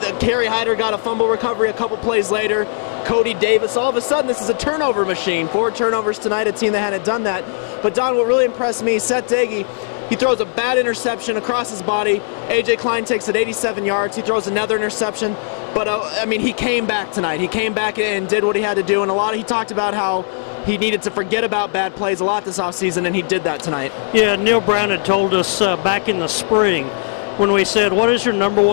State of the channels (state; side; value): silent; right; digital silence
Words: Kerry Hyder got a fumble recovery a couple plays later. Cody Davis, all of a sudden, this is a turnover machine. 4 turnovers tonight, a team that hadn't done that. But Don, what really impressed me, Seth Daigie, he throws a bad interception across his body. A.J. Klein takes it 87 yards. He throws another interception. But, I mean, he came back tonight. He came back and did what he had to do. And he talked about how he needed to forget about bad plays a lot this offseason, and he did that tonight. Yeah, Neil Brown had told us back in the spring when we said, what is your